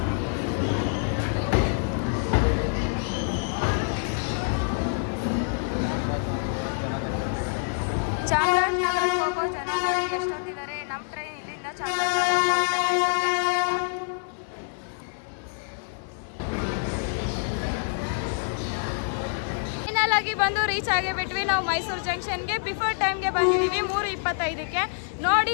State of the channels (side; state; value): right; silent; 61 dB below the other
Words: ಚಾಮರಾಜನಗರಕ್ಕೆ ಹೋಗೋ ಜನ ನೋಡಿ ಎಷ್ಟೊತ್ತಿದ್ದಾರೆ. ನಮ್ಮ ಟ್ರೈನ್ ಇಲ್ಲಿಂದ ಚಾಮರಾಜನಗರ ಫೈನಲ್ ಆಗಿ ಬಂದು ರೀಚ್ ಆಗಿಬಿಟ್ವಿ ನಾವು ಮೈಸೂರು ಜಂಕ್ಷನ್ಗೆ. ಬಿಫೋರ್ ಟೈಮ್ಗೆ ಬಂದಿದ್ದೀವಿ 3:25ಕ್ಕೆ. ನೋಡಿ